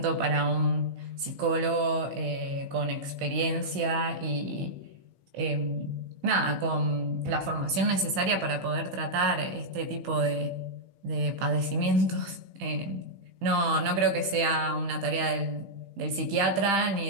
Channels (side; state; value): left; late; 15 ms